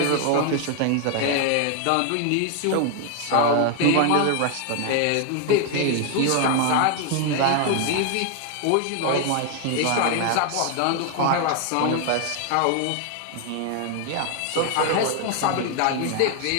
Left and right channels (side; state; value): both; different; correlation 0.00